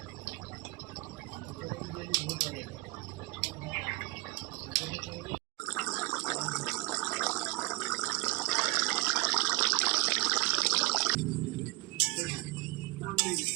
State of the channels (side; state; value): left; quieter; 23.8 dB